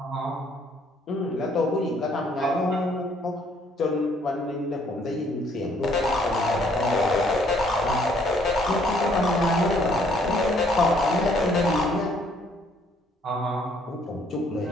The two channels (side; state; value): both; normal; correlation 0.65